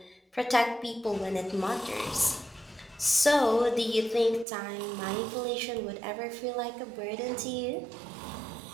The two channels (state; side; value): drops out; left; at 4.5 s